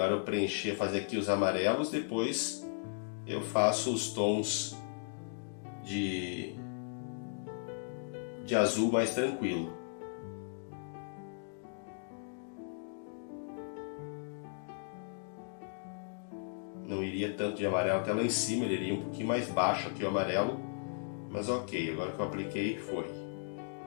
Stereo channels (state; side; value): silent; right; digital silence